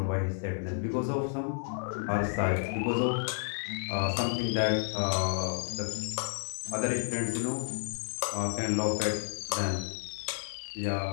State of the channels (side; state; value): right; silent; 57 dB below the other